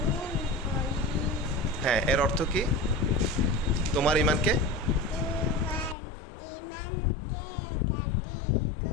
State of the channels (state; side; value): drops out; right; at 6.0 s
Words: হ্যাঁ, এর অর্থ কি? তোমার ইমানকে